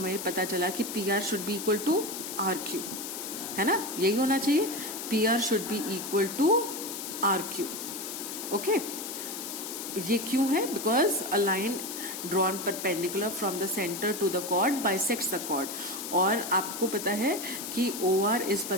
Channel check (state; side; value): noise; left; hiss, 7 dB below the sound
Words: पता चला कि P R should be equal to R Q, है ना, यही होना चाहिए, P R should be equal to R Q. Okay, ये क्यों है? Because a line drawn perpendicular from the centre to the chord bisects the chord, और आपको पता है कि O R is